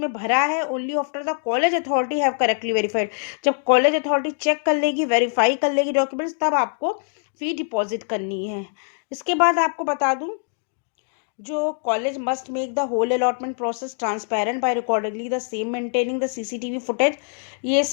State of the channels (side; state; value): right; silent; digital silence